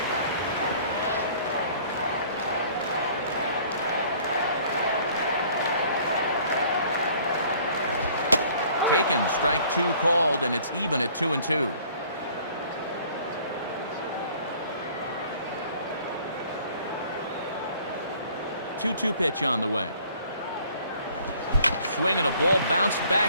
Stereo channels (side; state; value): both; inverted; correlation -0.55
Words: Taken, strike 2 called, and it's even at 2-2. Two-two pitch on the way. Swinging a ball bounced